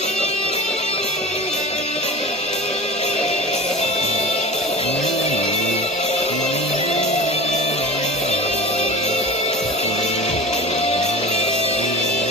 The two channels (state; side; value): normal; both; correlation 0.35